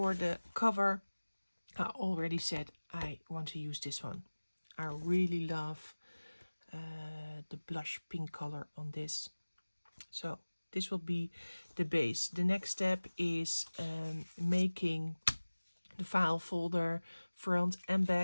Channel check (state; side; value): inverted; both; correlation -1.00